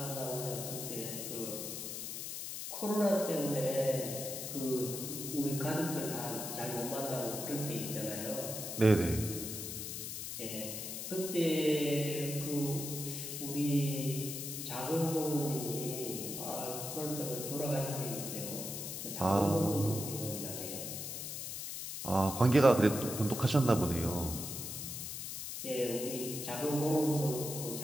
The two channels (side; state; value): left; noise; hiss, 6 dB below the sound